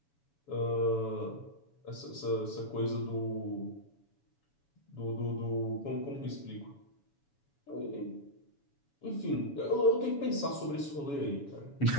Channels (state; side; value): late; right; 7.1 ms